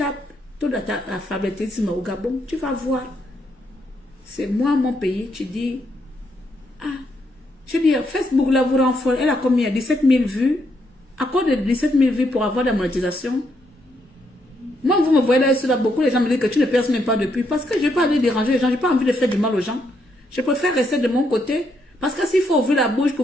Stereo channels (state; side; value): normal; both; correlation 0.77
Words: tout l'alphabétisme au Gabon, tu vas voir. C'est moi, mon pays, tu dis, ah, je dis, Facebook là vous rend folle, elle a combien? 17 000 vues. À cause de 17 000 vues pour avoir de la monétisation. Moi, vous me voyez là, beaucoup les gens me disent que tu ne perces même pas depuis. Parce que je n'ai pas envie de déranger les gens, je n'ai pas envie de faire du mal aux gens. Je préfère rester de mon côté. Parce que s'il faut ouvrir la bouche pour